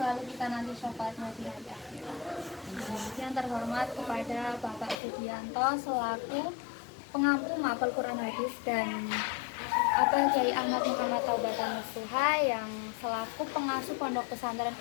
kita nanti syafaatnya di hari akhirat. Yang terhormat kepada Bapak Sugianto selaku pengampu mapel Quran hadis dan Kiai Ahmad Muhammad Taubatan Nasuha yang selaku pengasuh Pondok Pesantren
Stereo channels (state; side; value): drops out; right; at 5.0 s